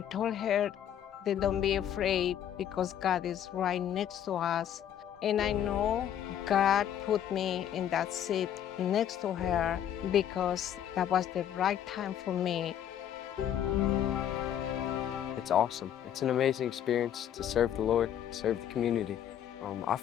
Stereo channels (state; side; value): quieter; right; 10.1 dB